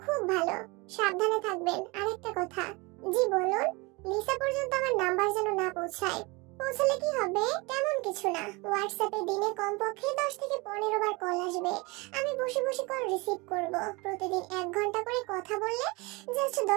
খুব ভালো। সাবধানে থাকবেন। আরেকটা কথা। জি বলুন। লিসা পর্যন্ত আমার নাম্বার যেন না পৌঁছায়। পৌঁছালে কি হবে? তেমন কিছু না। হোয়াটসঅ্যাপে দিনে কমপক্ষে 10 থেকে 15 বার কল আসবে। আমি বসে বসে কল রিসিভ করব। প্রতিদিন 1 ঘন্টা করে কথা বললে জাস্ট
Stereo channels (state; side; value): quieter; left; 26.1 dB